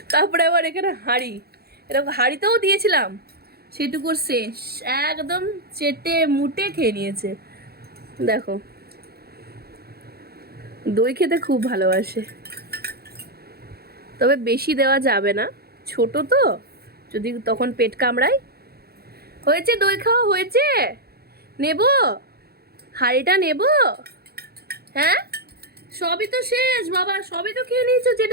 তারপরে আবার এখানে হাঁড়ি, এরকম হাঁড়িতেও দিয়েছিলাম, সেটুকুর শেষ, একদম চেটে মুটে খেয়ে নিয়েছে। দেখো, দই খেতে খুব ভালোবাসে, তবে বেশি দেওয়া যাবে না, ছোট তো, যদি তখন পেট কামড়ায়। হয়েছে, দই খাওয়া হয়েছে, নেব হাঁড়িটা নেব? হ্যাঁ, সবই তো শেষ বাবা, সবই তো খেয়ে নিয়েছো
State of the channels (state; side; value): late; left; 0.46 ms